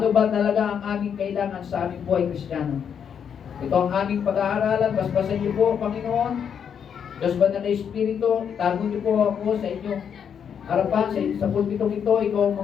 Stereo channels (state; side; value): quieter; right; 7.8 dB